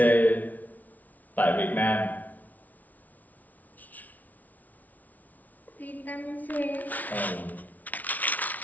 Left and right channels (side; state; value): right; late; 0.076 ms